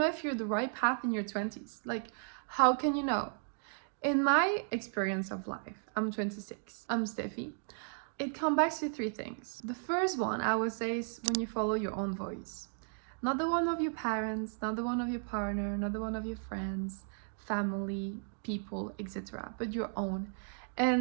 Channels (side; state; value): left; silent; digital silence